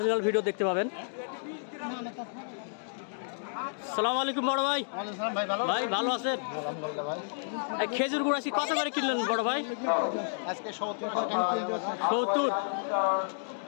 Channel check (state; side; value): silent; right; digital silence